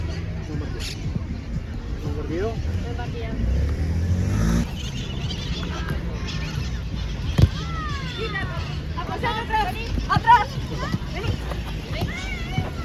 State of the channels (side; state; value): both; identical; correlation 1.00